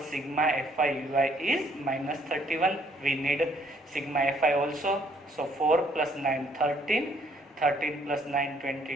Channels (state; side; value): normal; both; correlation 0.65